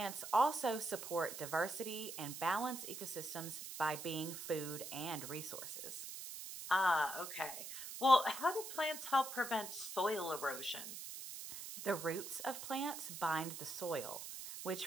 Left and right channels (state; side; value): noise; right; hiss, 8 dB below the sound